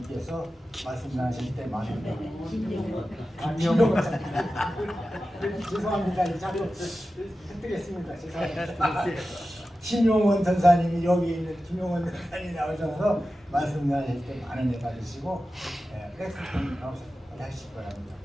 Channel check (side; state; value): both; normal; correlation 0.93